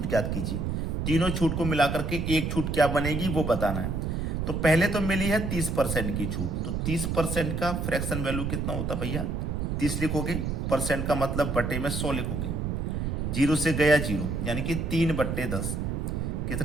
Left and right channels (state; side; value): noise; right; rumble, 1 dB below the sound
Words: ज्ञात कीजिए। तीनों छूट को मिलाकर के एक छूट क्या बनेगी वो बताना है। तो पहले तो मिली है 30% की छूट, तो 30% का फ्रैक्शन वैल्यू कितना होता भैया? 30 लिखोगे, परसेंट का मतलब बटे में 100 लिखोगे। जीरो से गया जीरो, यानी कि 3/10।